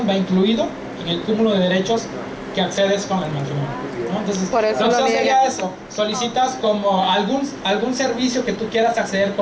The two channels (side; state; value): both; identical; correlation 1.00